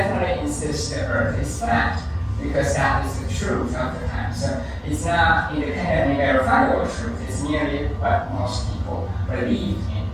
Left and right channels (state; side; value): identical; both; correlation 1.00